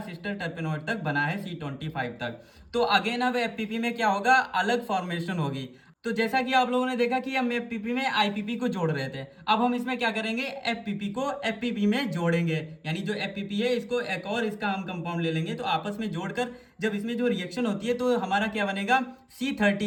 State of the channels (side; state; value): both; identical; correlation 1.00